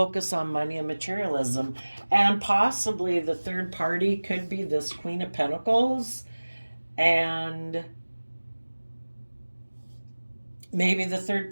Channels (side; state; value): both; inverted; correlation -1.00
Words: on money and materialism. And possibly the third party could be this Queen of Pentacles. And maybe the third